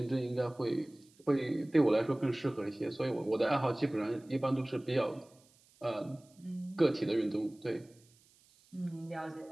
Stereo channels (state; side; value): noise; right; hiss, 30 dB below the sound